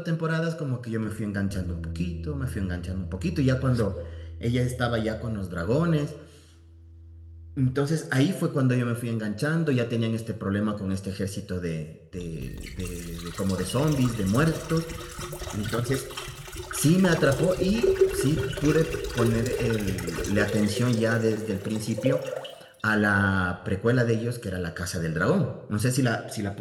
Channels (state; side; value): identical; both; correlation 1.00